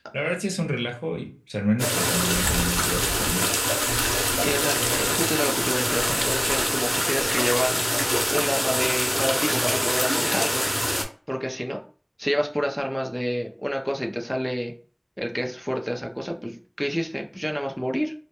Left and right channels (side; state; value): both; identical; correlation 1.00